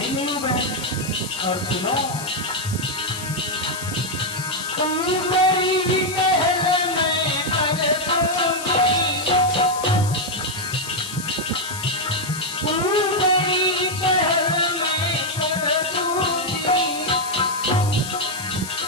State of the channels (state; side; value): noise; left; hiss, 10 dB below the sound